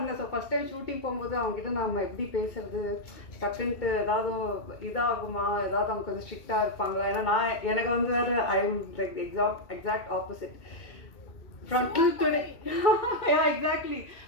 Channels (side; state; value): right; late; 2.2 ms